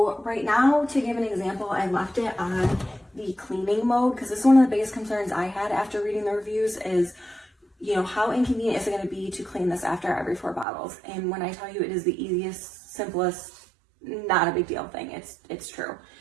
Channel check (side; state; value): left; drops out; at 10.7 s